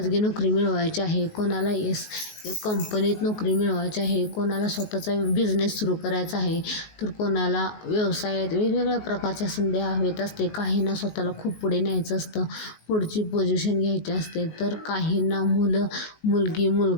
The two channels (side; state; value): right; late; 19 ms